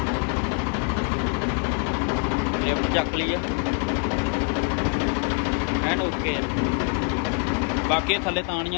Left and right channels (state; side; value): quieter; right; 38.4 dB